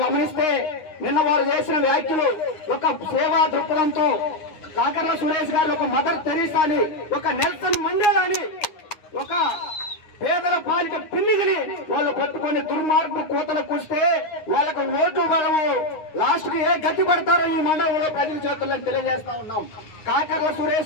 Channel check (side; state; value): right; late; 9.7 ms